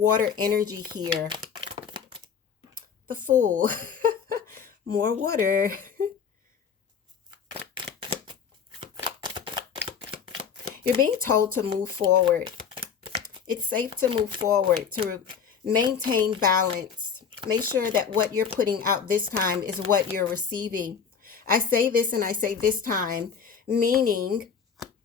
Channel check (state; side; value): quieter; right; 6.7 dB